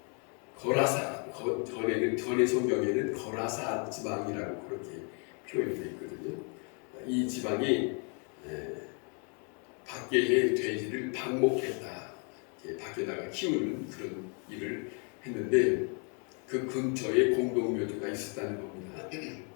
거라사, 전의 성경에는 거라사 지방이라고 그렇게 표현되어 있거든요. 이 지방이 밖의 돼지를 방목했다, 밖에다가 키우는 그런 일을 했는데 그 근처에 공동묘지가 있었다는 겁니다.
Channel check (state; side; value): quieter; right; 38.1 dB